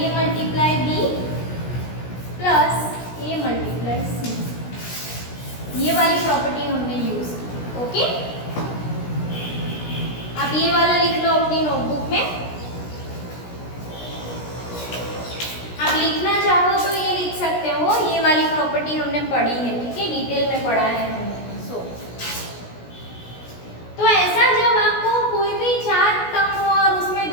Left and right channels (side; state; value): right; late; 17 ms